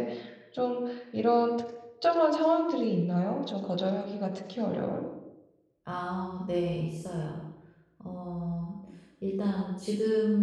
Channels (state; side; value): identical; both; correlation 1.00